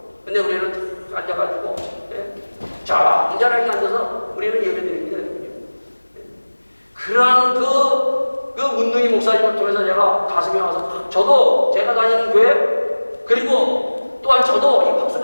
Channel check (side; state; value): both; inverted; correlation -1.00